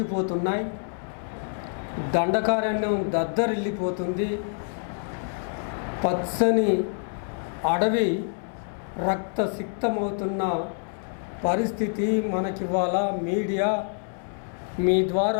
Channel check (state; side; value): silent; right; 60 dB below the other